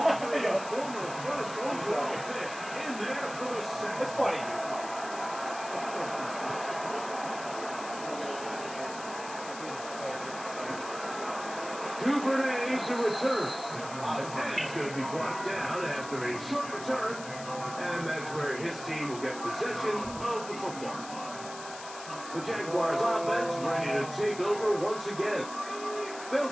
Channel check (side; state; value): left; noise; hiss, 13 dB below the sound